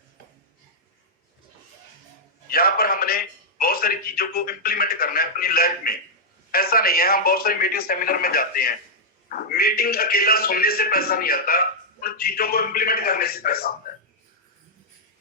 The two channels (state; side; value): normal; both; correlation -0.06